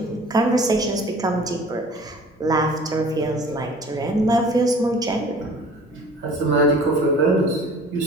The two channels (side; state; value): both; normal; correlation 0.47